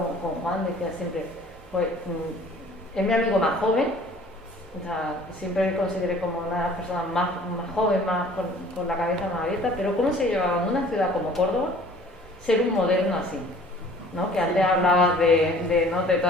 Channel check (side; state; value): both; normal; correlation 0.51